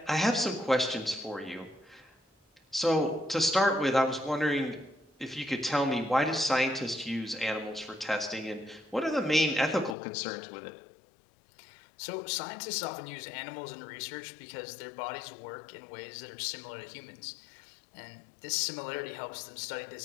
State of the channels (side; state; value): right; drops out; at 10.0 s